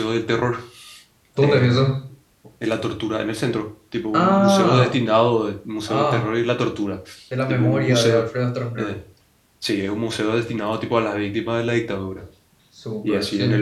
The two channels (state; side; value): identical; both; correlation 1.00